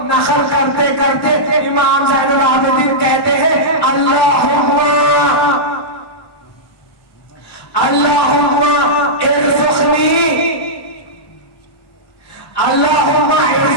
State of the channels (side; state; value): right; late; 1.1 ms